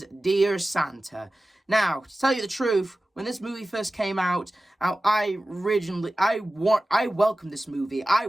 Dear Santa. Now, to tell you the truth, when this movie first came out, I welcomed this movie. I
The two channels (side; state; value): both; normal; correlation 0.95